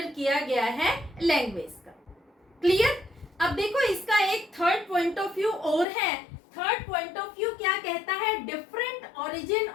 किया गया है लैंग्वेज का। क्लियर? अब देखो, इसका एक थर्ड पॉइंट ऑफ व्यू और है। थर्ड पॉइंट ऑफ व्यू क्या कहता है? Different origin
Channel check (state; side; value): drops out; right; at 5.9 s